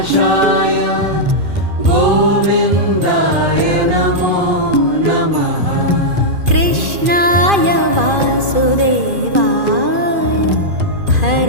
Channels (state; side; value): late; left; 2.4 ms